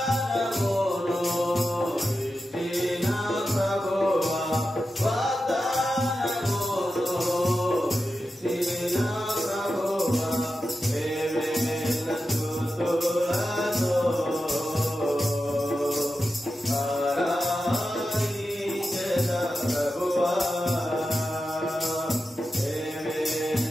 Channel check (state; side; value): normal; both; correlation 0.91